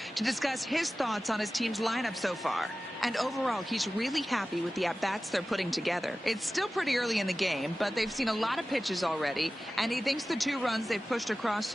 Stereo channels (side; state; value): both; normal; correlation 0.96